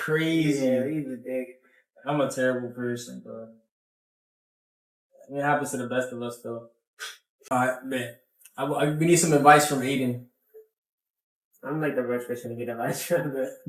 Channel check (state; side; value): identical; both; correlation 1.00